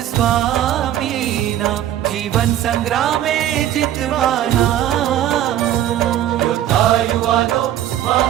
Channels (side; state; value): left; quieter; 11.8 dB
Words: स्वामीना जीवन संग्रामे जितवाना योद्धा युवानो